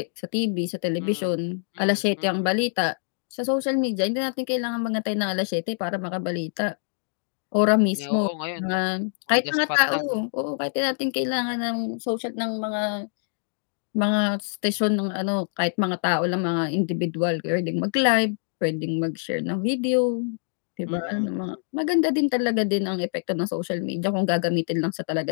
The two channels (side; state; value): right; silent; digital silence